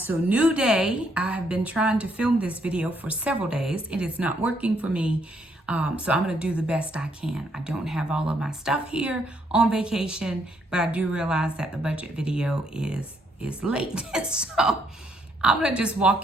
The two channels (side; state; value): both; normal; correlation 0.72